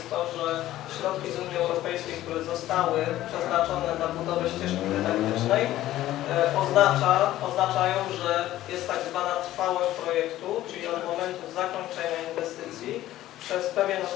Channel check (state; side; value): quieter; right; 14.4 dB